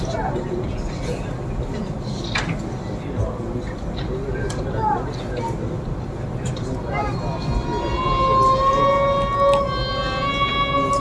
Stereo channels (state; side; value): identical; both; correlation 1.00